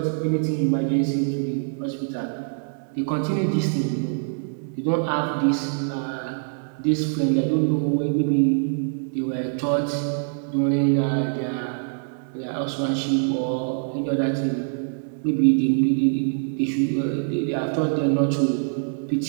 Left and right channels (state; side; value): silent; left; digital silence